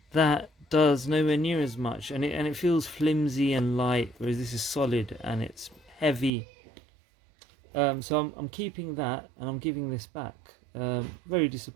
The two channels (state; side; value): drops out; left; at 6.3 s